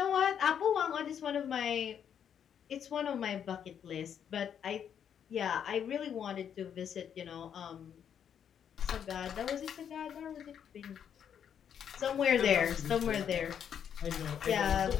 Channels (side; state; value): right; quieter; 8.5 dB